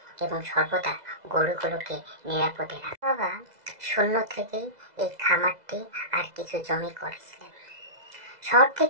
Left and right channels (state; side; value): late; left; 2.0 ms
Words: এবং সর্বদা গরুগুলোকে নিরাপদে রাখতেন। বাবা শূন্য থেকেই এই খামারটি আর কিছু জমি করেছিলেন। শহর